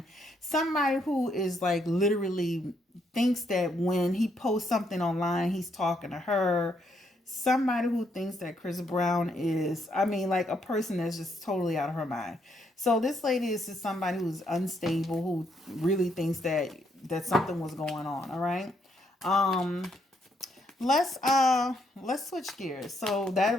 Somebody who is like literally thinks that when he posts something online, he's talking to her. Somebody who thinks that Chris Brown is, like a person that's just totally out of her mind. So this lady is just somebody who's unstable, who really thinks that something was going on. All right. Let's switch gears. So that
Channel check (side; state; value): both; normal; correlation 0.74